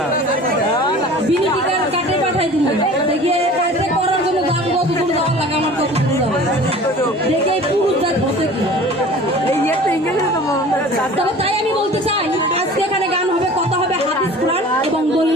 বিনি টিকার কাটে পাঠাই দিল। দেখে কাটে করার জন্য দাম কত দূর যাওয়ার লাগে, আমার কত দূর যাবে দেখে পুরুষ জাত হতে কি। তবে তাই আমি বলতে চাই, আজকে এখানে গান হবে, কথা হবে হাদিস কোরআন এবং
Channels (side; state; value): both; normal; correlation 0.43